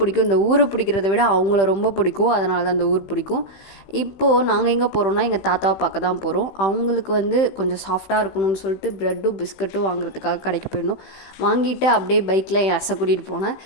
இந்த ஊரை பிடிக்கிறத விட அவங்கள ரொம்ப பிடிக்கும். அதனால தான் இந்த ஊர் பிடிக்கும். இப்போது நாங்கள் எங்கே போகிறோன்னா எங்கள் தாத்தாவை பார்க்க தான் போகிறோம். அவங்களுக்கு வந்து கொஞ்சம் சாஃப்டாக இருக்கணும்னு சொல்லிட்டு ப்ரெட்டும் பிஸ்கட்டும் வாங்குறதுக்காக கடைக்கு போயிருந்தோம். வாங்கிட்டு அப்படியே பைக்கில் என் அசை கூட்டிகிட்டு போனேன்.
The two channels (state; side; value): late; right; 15 ms